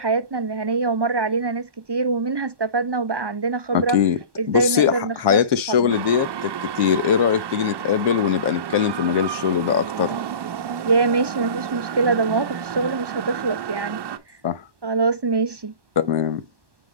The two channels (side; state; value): left; late; 1.2 ms